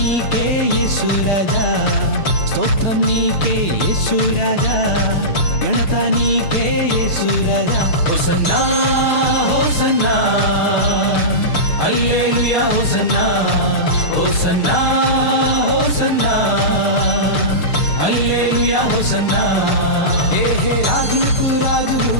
యేసు రాజా, స్తోత్రం నీకే యేసు రాజా, ఘనత నీకే యేసు రాజా. హోసన్నా హోసన్నా హల్లెలూయా హోసన్నా, హోసన్నా హోసన్నా హల్లెలూయా హోసన్నా. హే రాజులకు రాజు,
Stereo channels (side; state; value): right; late; 6.6 ms